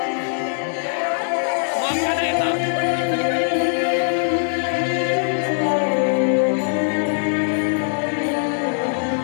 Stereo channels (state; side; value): silent; right; digital silence